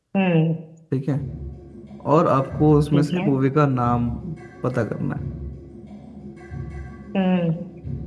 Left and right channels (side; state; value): both; identical; correlation 1.00